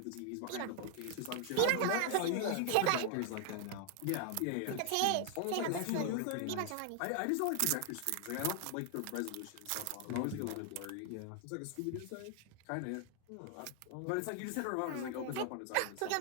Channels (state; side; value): different; both; correlation 0.00